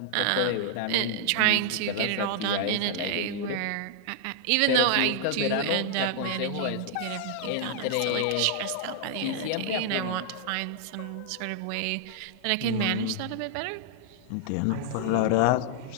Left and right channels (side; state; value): both; different; correlation -0.01